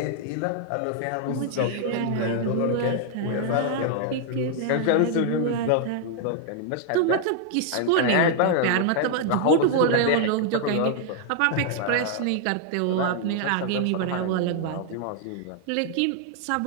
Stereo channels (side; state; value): both; different; correlation 0.00